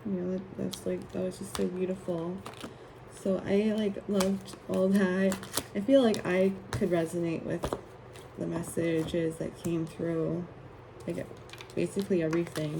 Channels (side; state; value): both; identical; correlation 1.00